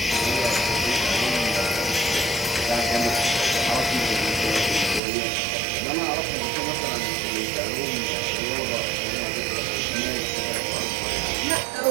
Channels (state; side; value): drops out; left; at 5.0 s